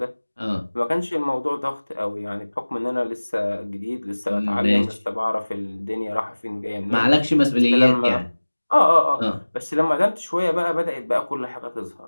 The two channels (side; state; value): both; inverted; correlation -1.00